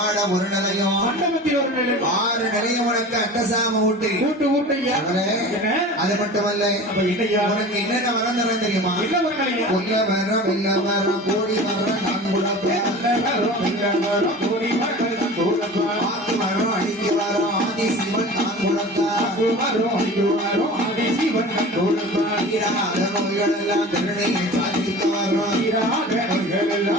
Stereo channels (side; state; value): both; normal; correlation 0.37